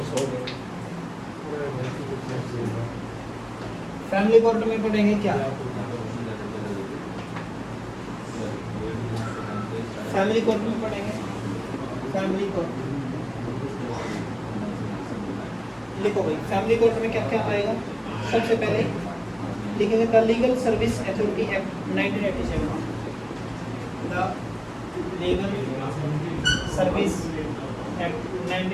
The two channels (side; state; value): both; identical; correlation 1.00